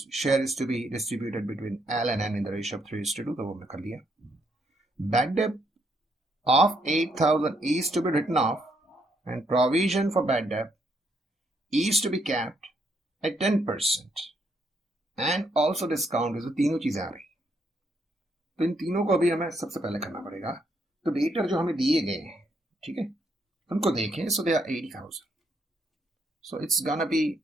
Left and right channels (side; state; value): both; normal; correlation 0.74